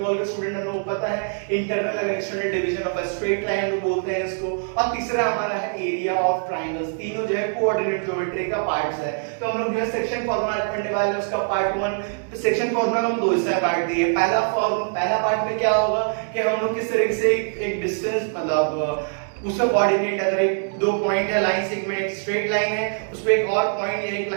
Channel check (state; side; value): silent; left; digital silence